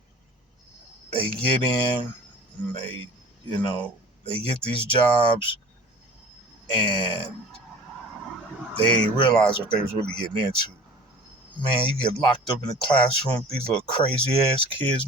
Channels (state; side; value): normal; both; correlation 0.43